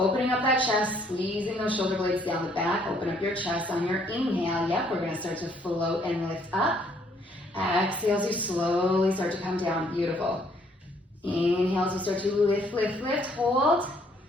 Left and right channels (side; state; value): both; normal; correlation 0.65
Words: up that chest, squeezing those shoulder blades down the back. Open up your chest on your inhale. Yep, we're gonna start to float and lift up. Exhale as you slowly start to come down. Beautiful. Inhale as you start to lift, lift, lift, hold.